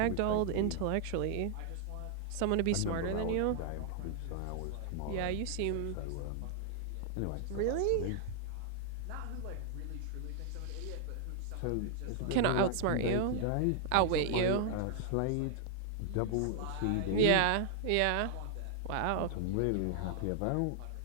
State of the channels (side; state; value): both; different; correlation -0.01